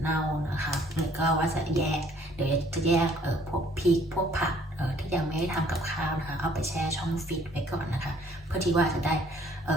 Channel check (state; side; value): normal; both; correlation 0.59